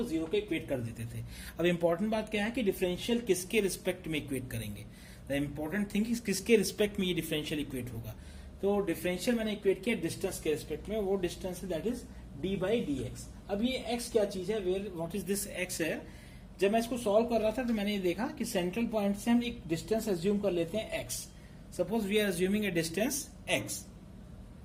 0 के इक्वेट कर देते थे। अब इंपॉर्टेंट बात क्या है कि डिफरेंशियल किसके रिस्पेक्ट में इक्वेट करेंगे। द इंपॉर्टेंट थिंग इज किसके रिस्पेक्ट में ये डिफरेंशियल इक्वेट होगा। तो डिफरेंशियल मैंने इक्वेट किया डिस्टेंस के रिस्पेक्ट में, वो डिस्टेंस है दैट इज d/dx। अब ये x क्या चीज है, where what is this x है। जब मैं इसको सॉल्व कर रहा था तो मैंने ये देखा कि सेंट्रल पॉइंट से हम एक डिस्टेंस एज्यूम कर लेते हैं x। Suppose we are assuming a distance x।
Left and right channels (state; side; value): identical; both; correlation 1.00